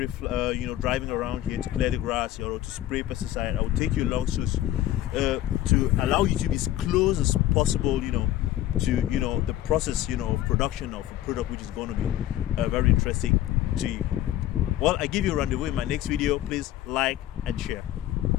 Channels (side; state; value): right; quieter; 13.4 dB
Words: driving around here to clear the grass or to spray pesticide, I will take you along to allow you to be as close as possible, to the process, of production of a product which is going to be very interesting to you. Well, I give you a rendezvous in my next video. Please like and share.